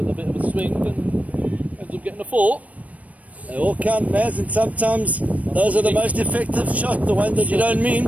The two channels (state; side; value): late; left; 0.069 ms